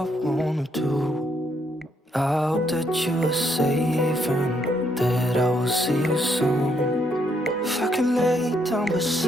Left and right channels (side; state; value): both; normal; correlation 0.73